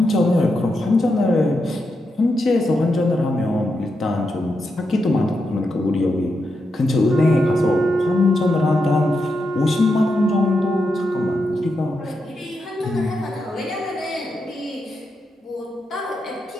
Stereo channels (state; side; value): normal; both; correlation 0.85